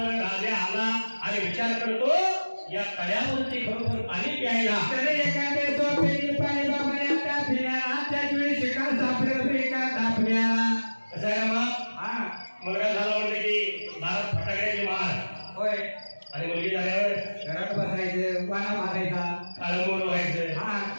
राजा आला आणि विचार करतो या तळ्यावरती खरोखर पाणी प्यायला. तर एखाद्या झोपेली पाणी बाबऱ्या तापल्या त्याच वेळी शिकार सापडलं एका तापल्याला. कसं आहे मग हा मुलगा झाला म्हणजे की दारात फटाक्याची मार होय आणि मुलगी झाल्यावर घरात बसायचं वाना मारायचा काळमोड व्हायचं. हा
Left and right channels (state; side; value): inverted; both; correlation -1.00